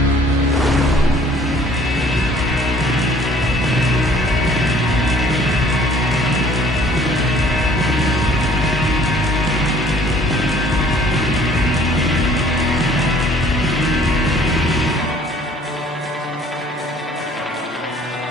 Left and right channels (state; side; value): normal; both; correlation 0.56